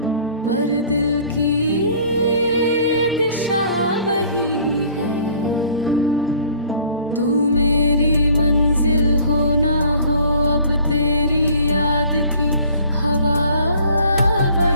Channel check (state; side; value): inverted; both; correlation -0.53